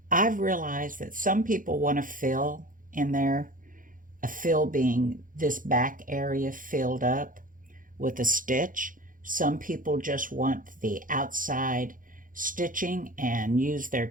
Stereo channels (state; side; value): late; left; 0.39 ms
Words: I've realized that some people want to fill in there, a fill being this back area filled up with a stitch. Some people just want the outside stitching and use their